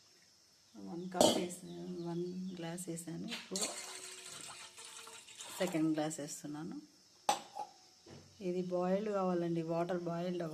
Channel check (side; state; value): both; identical; correlation 1.00